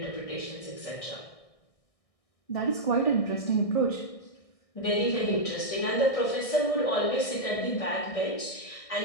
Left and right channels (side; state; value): right; late; 1.6 ms